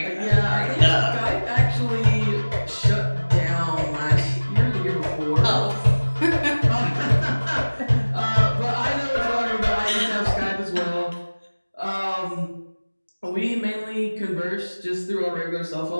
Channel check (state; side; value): inverted; both; correlation -1.00